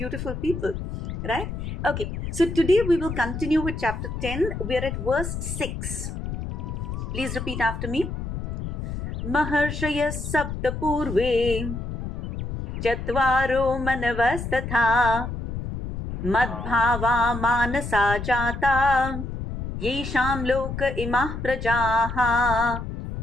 people, right? Okay, so today we will continue with chapter 10. We are at verse 6. Please repeat after me. Maharshaya sapta purve chatvaro manavasthatha madbhava manasa jata yesham loka imah prajaha.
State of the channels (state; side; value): noise; left; rumble, 6 dB below the sound